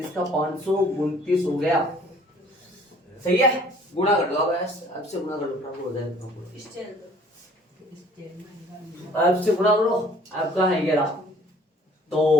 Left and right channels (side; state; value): both; normal; correlation 0.55